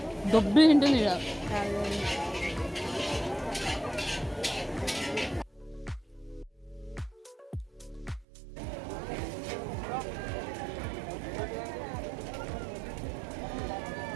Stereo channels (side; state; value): left; drops out; at 8.2 s